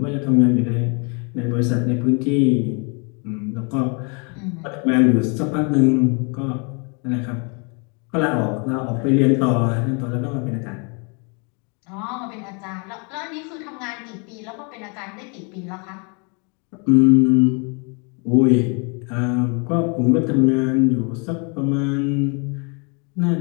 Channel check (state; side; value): quieter; right; 34.8 dB